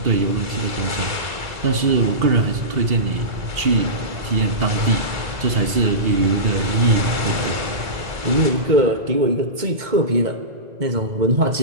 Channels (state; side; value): late; left; 2.0 ms